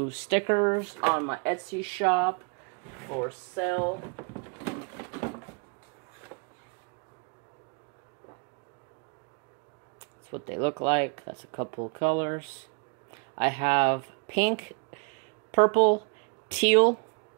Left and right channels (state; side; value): quieter; left; 34.3 dB